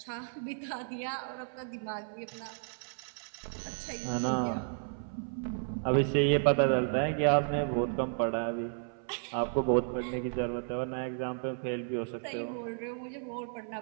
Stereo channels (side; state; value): left; silent; 56 dB below the other